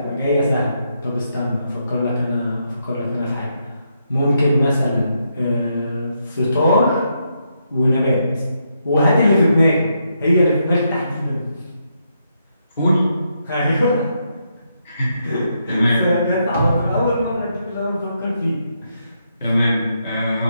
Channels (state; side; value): inverted; both; correlation -0.80